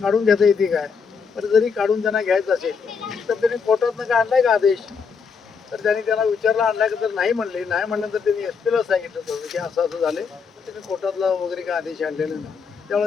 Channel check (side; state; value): right; quieter; 5.7 dB